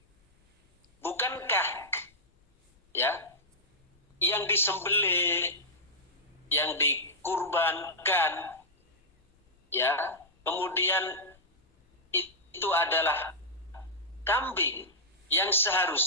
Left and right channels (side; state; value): both; normal; correlation -0.09